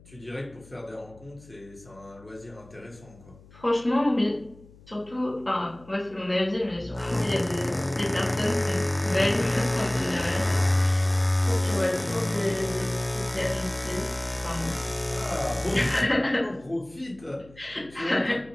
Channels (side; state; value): left; noise; hum, 24 dB below the sound